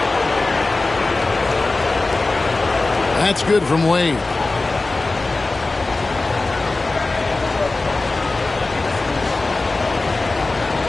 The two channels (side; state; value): right; quieter; 3.3 dB